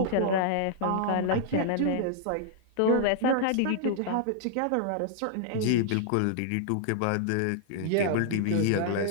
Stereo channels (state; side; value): different; both; correlation -0.01